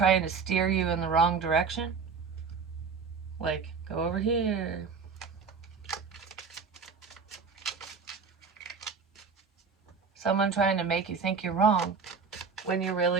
to steer you in the wrong direction. Like, go over here. Someone trying to make you think you're wrong when you're really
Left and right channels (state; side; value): quieter; left; 5.4 dB